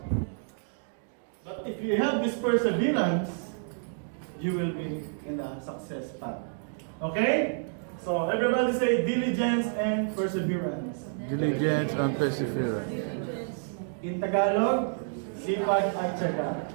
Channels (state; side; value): silent; left; digital silence